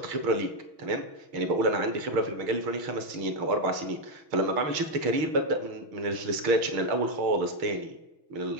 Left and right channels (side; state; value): left; late; 6.2 ms